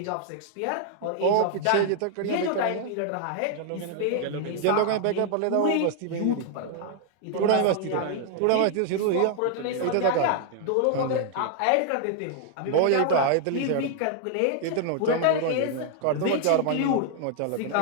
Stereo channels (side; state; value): both; different; correlation 0.00